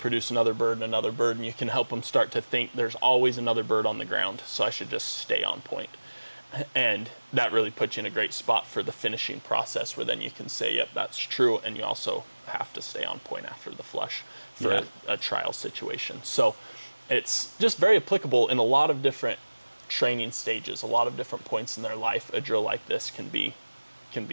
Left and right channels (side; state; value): both; inverted; correlation -1.00